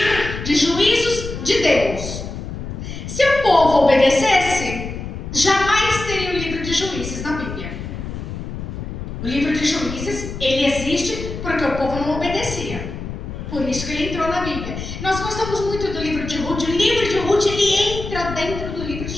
de juízos de Deus. Se o povo obedecesse, jamais teria o livro de Juízes na Bíblia. O livro de Juízes, ele existe porque o povo não obedecia. Por isso que ele entrou na Bíblia. Nós gostamos muito do livro de Ruth. O livro de Ruth, ele entra dentro do livro de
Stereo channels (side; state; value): left; noise; rumble, 8 dB below the sound